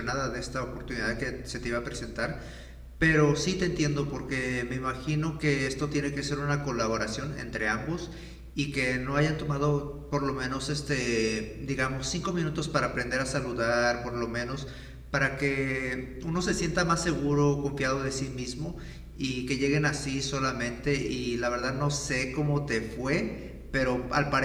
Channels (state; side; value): identical; both; correlation 1.00